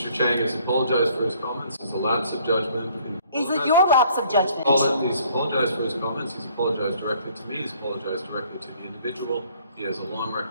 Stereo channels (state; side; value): inverted; both; correlation -0.60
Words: Chiang has apologized for his comments. It's a lapse of judgment. Is it your lapse of judgment? He's apologized for his comments. He's apologized directly to me. He's apologized directly to the individual. He has a long